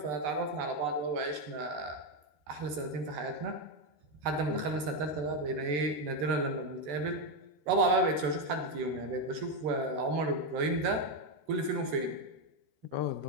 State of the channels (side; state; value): left; late; 14 ms